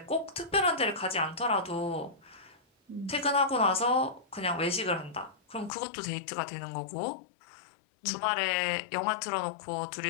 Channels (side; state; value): right; drops out; at 5.7 s